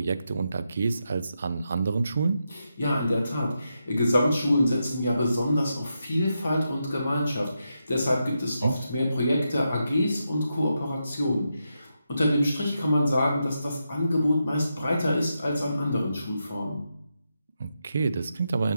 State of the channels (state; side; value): inverted; both; correlation -0.85